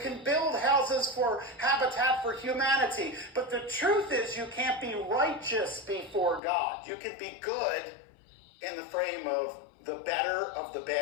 can build houses for Habitat for Humanity. But the truth is, you can't be righteous before God. You can be good in the frame of the better of the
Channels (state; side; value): drops out; right; at 6.4 s